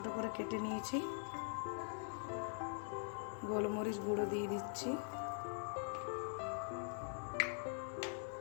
করে কেটে নিয়েছি। গোলমরিচ গুঁড়ো দিয়ে দিচ্ছি,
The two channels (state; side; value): silent; right; digital silence